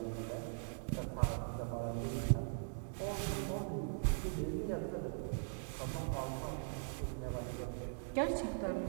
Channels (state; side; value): silent; left; digital silence